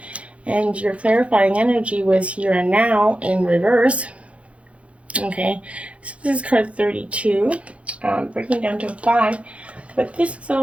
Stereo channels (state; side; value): late; left; 0.063 ms